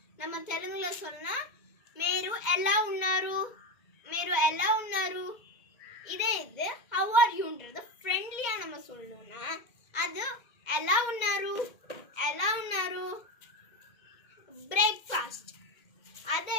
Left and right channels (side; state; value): right; late; 2.0 ms